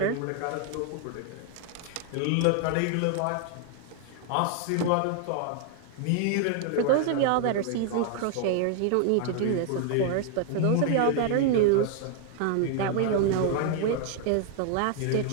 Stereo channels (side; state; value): both; different; correlation 0.00